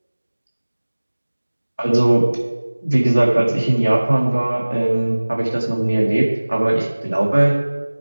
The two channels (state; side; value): inverted; both; correlation -1.00